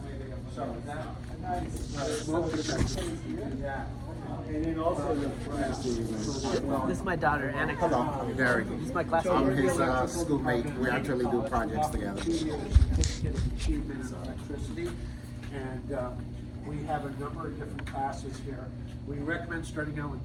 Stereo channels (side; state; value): both; identical; correlation 1.00